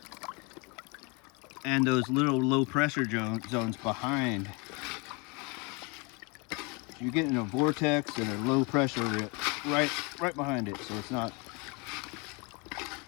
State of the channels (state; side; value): quieter; right; 30.3 dB